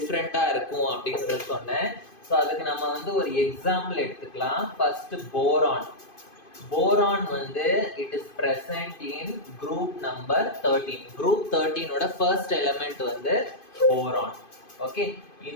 இருக்கும் அப்படின்றது சொன்னேன். ஸோ அதுக்கு நம்ம ஒரு எக்ஸாம்பிள் எடுத்துக்கலாம். First boron. போரான் வந்து it is present in group number 13. group 13 ஓட first element வந்து boron. okay,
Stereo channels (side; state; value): right; late; 2.5 ms